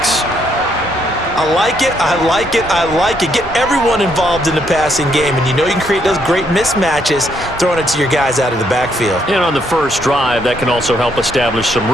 I like it, I like it, I like it. Get everyone involved in the passing game, and you know you can create those great mismatches throwing it to your guys out of the backfield. And on the first drive, that can also help establish some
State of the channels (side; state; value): both; normal; correlation 0.73